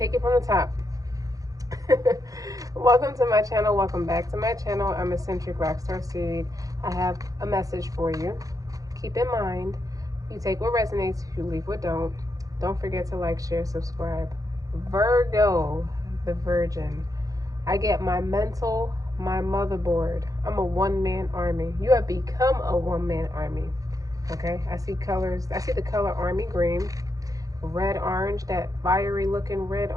it from the top. Welcome to my channel. Welcome back to my channel. I'm Eccentric RockStar'Seed. I have a message for you. Keep in mind, you take what resonates, you leave what don't. Don't forget to like, share, subscribe. Virgo, the Virgin. I get my mental, my motherboard. I'm a one-man army. You have become a one-man army. Okay, I see colors. I see the color army green, red orange, that fiery looking red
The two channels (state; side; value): late; left; 0.17 ms